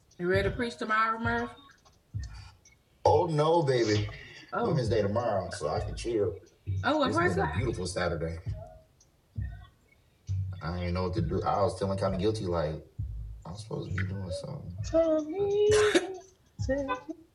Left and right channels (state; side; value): identical; both; correlation 1.00